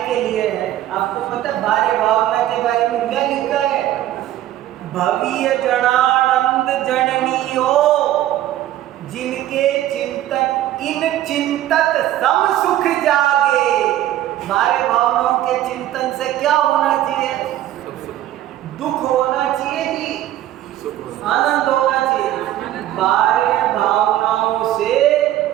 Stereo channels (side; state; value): left; quieter; 13.3 dB